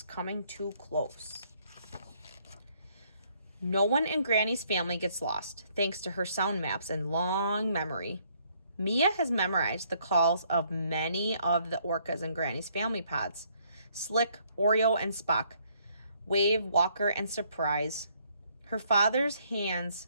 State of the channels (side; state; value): both; inverted; correlation -0.68